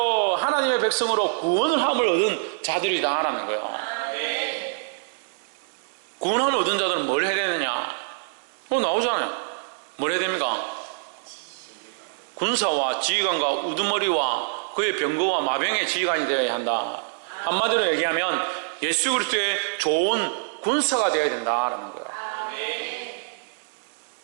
하나님의 백성으로 구원을 함을 얻은 자들이다라는 거예요. 구원함을 얻은 자들은 뭘 해야 되느냐? 나오잖아요. 뭘 해야 됩니까? 군사와 지휘관과 우두머리와 그의 병거와 마병의 지휘관이 되어야 한다. 한마디로 얘기하면 예수 그리스도의 좋은 군사가 되어야 된다라는 거예요.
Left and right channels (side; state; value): left; silent; digital silence